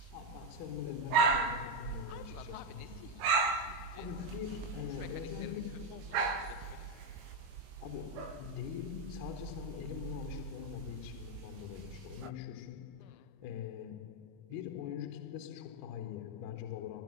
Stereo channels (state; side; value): late; left; 22 ms